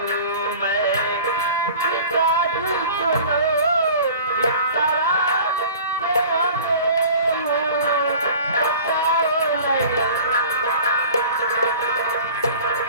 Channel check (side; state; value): both; inverted; correlation -0.43